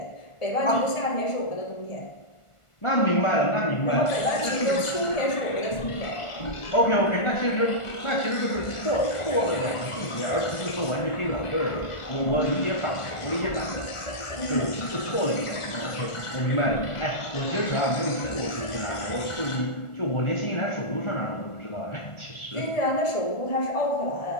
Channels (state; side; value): late; right; 1.4 ms